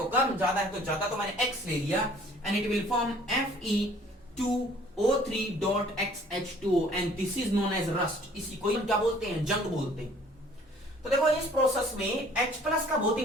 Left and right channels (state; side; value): normal; both; correlation 0.55